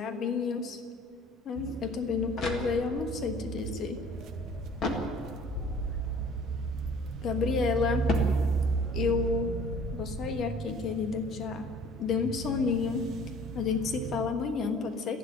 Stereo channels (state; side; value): normal; both; correlation 0.51